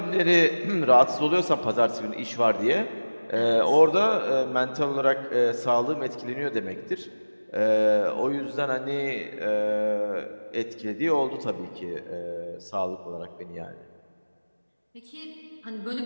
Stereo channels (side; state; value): both; inverted; correlation -1.00